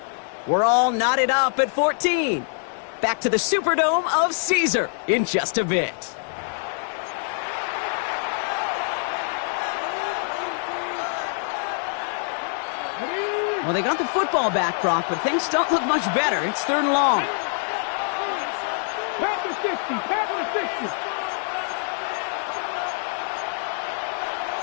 We're all knotted up at 14. Back to the Superdome of Caesar in just a bit. Well, they got the football back, Brock, but things don't look much better. It's 3rd and long. Panther 60. Panther 60.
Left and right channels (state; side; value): silent; right; 57 dB below the other